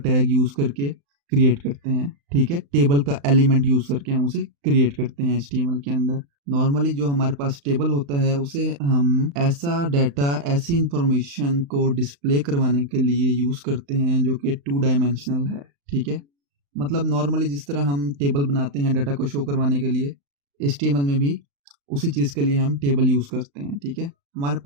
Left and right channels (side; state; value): left; late; 35 ms